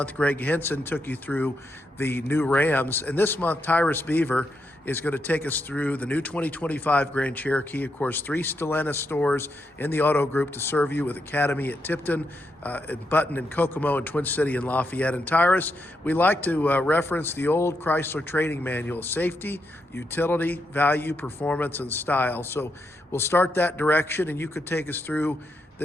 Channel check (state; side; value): normal; both; correlation 0.82